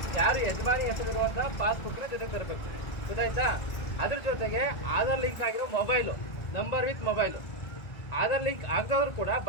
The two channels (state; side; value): late; right; 1.8 ms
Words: ಯಾರು ಯಜಮಾನಿ ಹೆಸರಿರುವಂತ ಪಾಸ್ಬುಕ್ ನ ಜೊತೆಗೆ ತರಬೇಕು, ಗೊತ್ತಾಯ್ತಾ? ಅದ್ರ ಜೊತೆಗೆ ಆಧಾರ್ ಲಿಂಕ್ ಆಗಿರೋ mobile, number with mobile. Aadhaar link ಆಗದವ್ರು ಕೂಡ